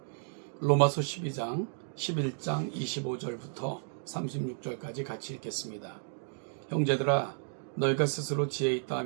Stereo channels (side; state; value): left; silent; digital silence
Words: 로마서 12장 11장 25절부터 36절까지 같이 읽겠습니다. 형제들아, 너희가 스스로 지혜 있다